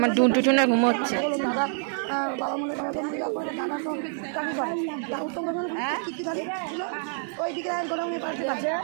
ডুনটুটুনা ঘুমোচ্ছে। বাবা মনে করে দাদা তো চাকরি করে উত্তম ওই দিকে গোডাউনে পাশে আছে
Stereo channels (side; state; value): left; silent; 60 dB below the other